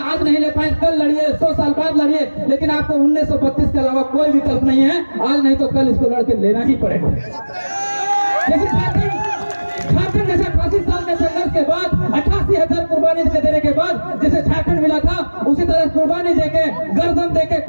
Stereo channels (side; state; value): both; inverted; correlation -1.00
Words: नहीं ले पाए कल लड़िए, 100 साल बाद लड़िए, लेकिन आपको 1932 के अलावा कोई विकल्प नहीं है। आज नहीं तो कल इसको लड़के लेना ही पड़ेगा। जैसे झारखंड जैसे 85 साल के संघर्ष के बाद 88,000 कुर्बानी देने के बाद जैसे झारखंड मिला था, उसी तरह कुर्बानी देके, गर्दन देके,